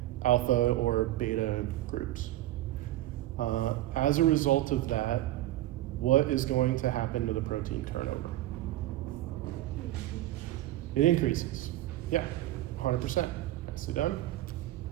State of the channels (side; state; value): left; quieter; 15.3 dB